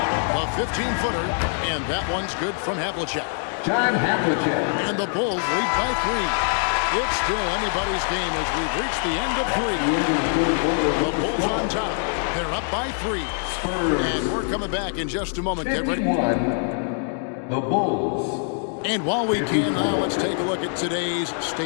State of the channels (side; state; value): right; silent; 58 dB below the other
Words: A 15-footer, and that one's good from Havlicek. John Havlicek. And the Bulls lead by 3. It's still anybody's game as we've reached the end of 3. The Bulls on top. They're up by 3. Spurs. And we're coming back in just a moment. Get ready. 51. The Bulls. And while we can now, let's take a look at today's